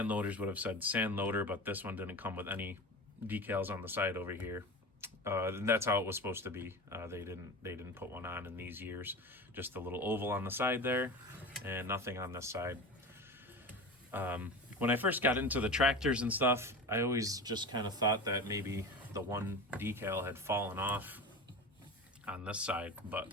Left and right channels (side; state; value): both; normal; correlation 0.30